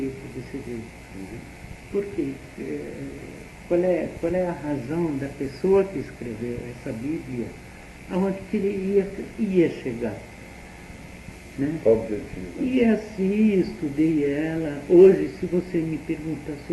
desse jeito. Por quê? Qual é a razão da pessoa que escreveu essa Bíblia, aonde que ele ia chegar? né? Qual o objetivo? E assim estudei ela. Hoje, se você me perguntar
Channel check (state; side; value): identical; both; correlation 1.00